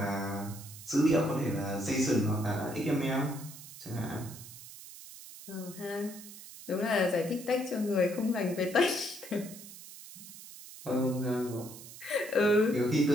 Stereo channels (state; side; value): noise; right; hiss, 15 dB below the sound